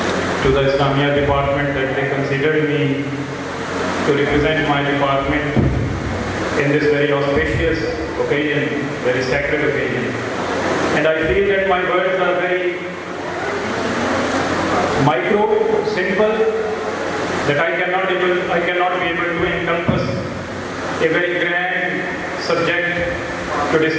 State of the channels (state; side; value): identical; both; correlation 1.00